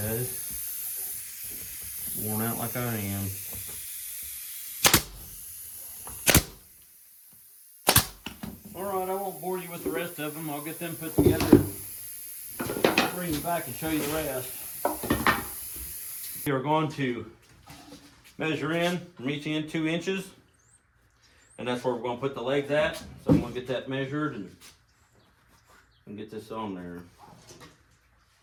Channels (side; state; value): both; identical; correlation 1.00